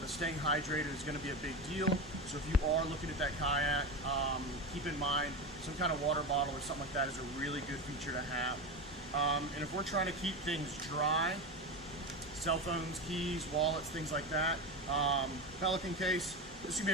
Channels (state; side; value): normal; both; correlation 0.21